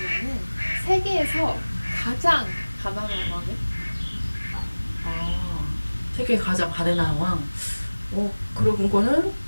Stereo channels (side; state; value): both; inverted; correlation -1.00